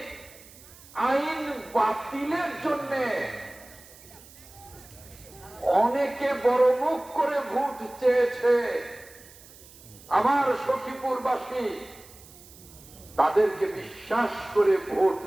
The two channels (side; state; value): right; noise; hiss, 21 dB below the sound